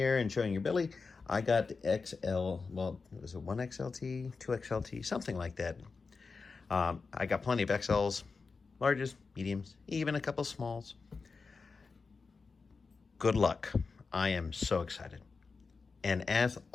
and showing your belly, I got the XL, well, was it 1XLT, 2XLT, something like that. I got plenty of XLs, larges, mediums, even a couple smalls. Good luck. I am so excited. And as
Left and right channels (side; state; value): right; quieter; 4.6 dB